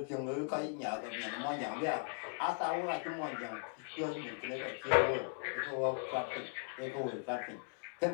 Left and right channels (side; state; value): right; silent; 52 dB below the other